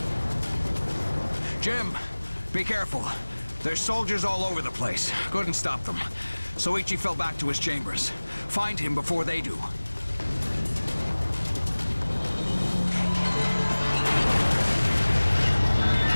Jim, be careful. There's soldiers all over the place. Couldn't stop them. Soichi fell back to his chambers. Find him before they do.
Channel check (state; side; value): inverted; both; correlation -1.00